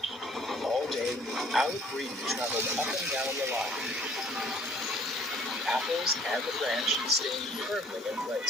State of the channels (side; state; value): both; normal; correlation 0.56